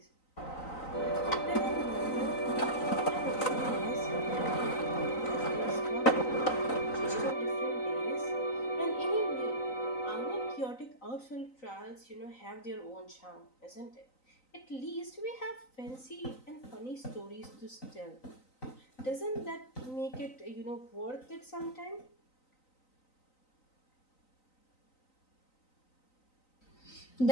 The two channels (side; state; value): right; late; 3.9 ms